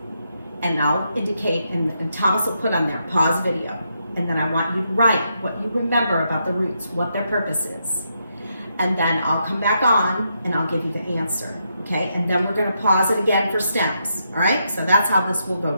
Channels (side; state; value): both; inverted; correlation -0.80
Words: and I'll indicate, and Thomas will put on there, pause video. And then I want you to write what you remember about the roots, what their purpose is. And then I'll come back on and I'll give you the answer, okay? And then we're gonna pause it again for stems, all right? So that's how this will go